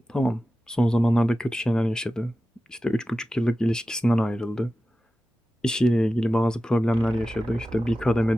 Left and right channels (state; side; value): normal; both; correlation 0.94